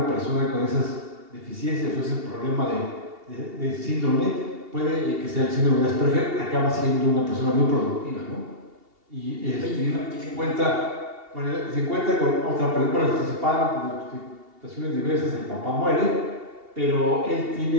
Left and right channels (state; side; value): late; left; 2.8 ms